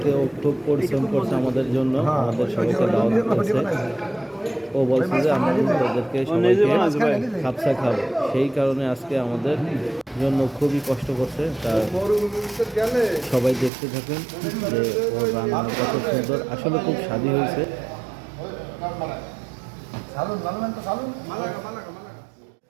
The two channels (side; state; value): left; drops out; at 13.7 s